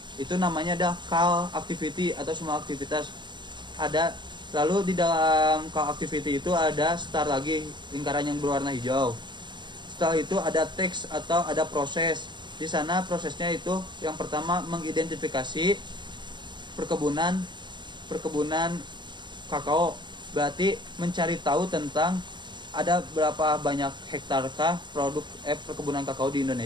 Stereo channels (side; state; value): left; late; 0.22 ms